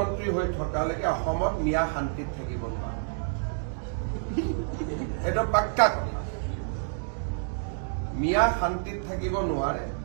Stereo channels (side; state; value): left; silent; digital silence